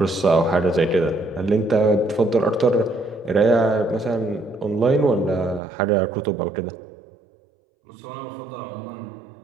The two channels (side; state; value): left; drops out; at 5.6 s